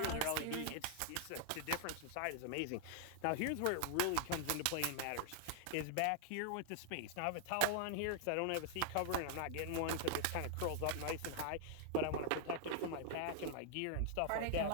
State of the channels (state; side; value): different; both; correlation 0.00